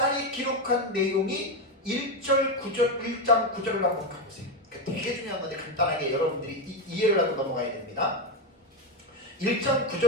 기록한 내용이 1장 9절을 한번 가보세요. 되게 중요한 건데 간단하게 여러분들이 이해를 하고 넘어가야 됩니다. 1장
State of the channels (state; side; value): normal; both; correlation 0.10